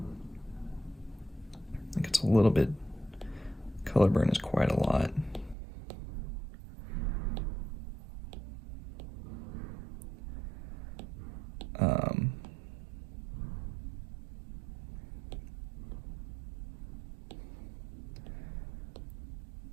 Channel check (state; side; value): drops out; left; at 5.6 s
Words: I think it's a little bit, color burn is quite a lot.